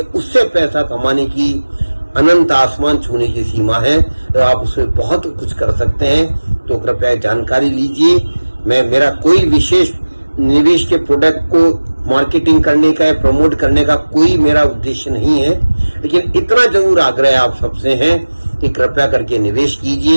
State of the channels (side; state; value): both; inverted; correlation -1.00